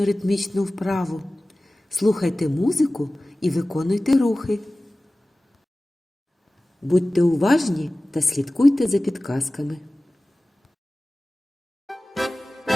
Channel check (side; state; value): both; normal; correlation 0.97